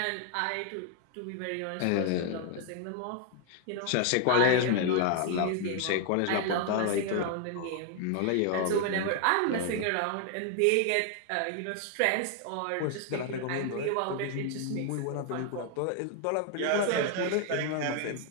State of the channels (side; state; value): both; different; correlation 0.00